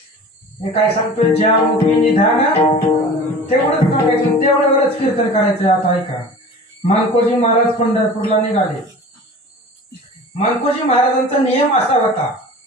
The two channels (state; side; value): normal; both; correlation 0.39